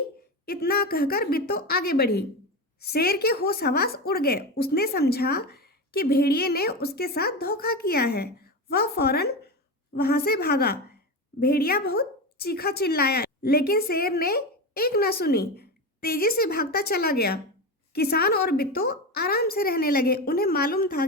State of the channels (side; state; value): both; normal; correlation 0.20